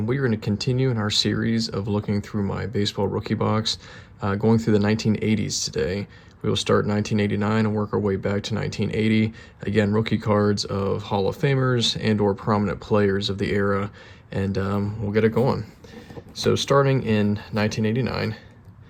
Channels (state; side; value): identical; both; correlation 1.00